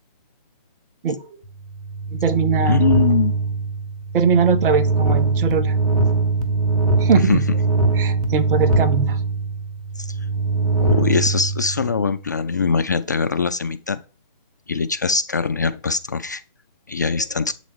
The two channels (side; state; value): both; inverted; correlation -0.39